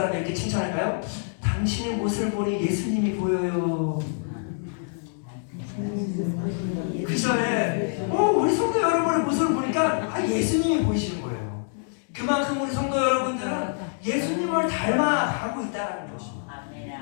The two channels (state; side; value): silent; right; digital silence